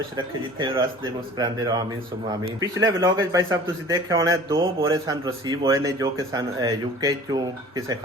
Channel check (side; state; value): both; normal; correlation 0.45